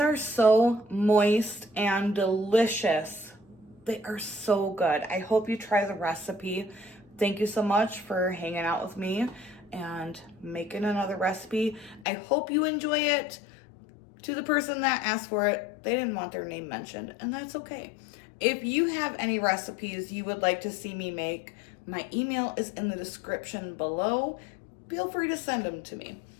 so moist and delicious. They are so good. I hope you try the recipe. Thank you so much for hanging out with me and making another recipe. I hope you enjoy it. To the person that asked for it, they didn't want their name mentioned, and that's okay. If you have any recipes you would like to see me make, my email is in the description below. Feel free to send them to me.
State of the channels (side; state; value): right; drops out; at 12.1 s